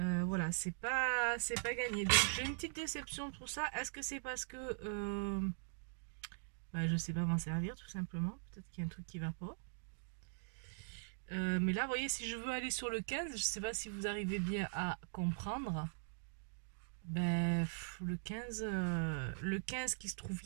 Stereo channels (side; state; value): left; silent; digital silence